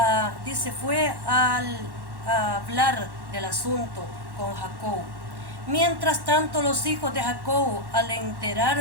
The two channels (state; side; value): late; left; 1.1 ms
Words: fue a hablar del asunto con Jacob. Mientras tanto, los hijos de Jacob, al